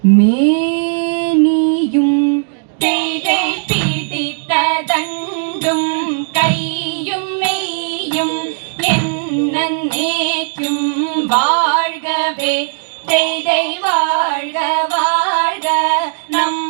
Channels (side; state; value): left; silent; digital silence